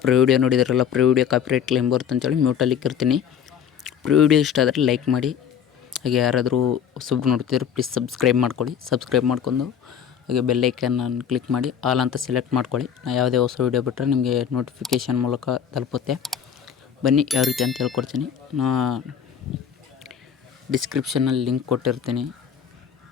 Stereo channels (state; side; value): quieter; right; 8.3 dB